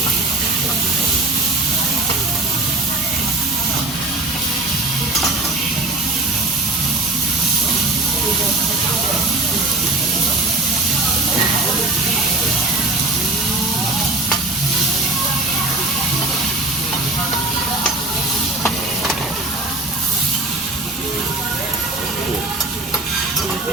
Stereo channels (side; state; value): left; quieter; 3.0 dB